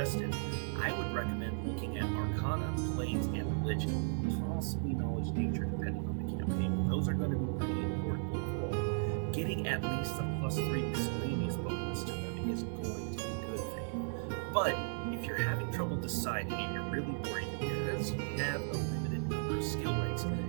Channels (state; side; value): silent; left; digital silence